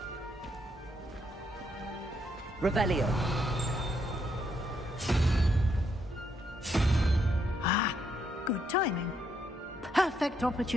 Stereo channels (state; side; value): normal; both; correlation 0.76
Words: Revelio. Ah, good timing. Perfect